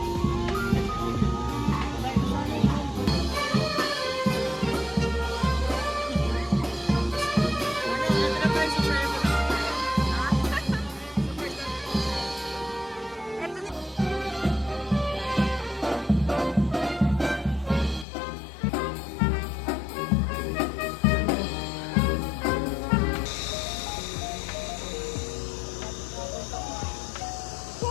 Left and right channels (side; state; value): right; drops out; at 18.1 s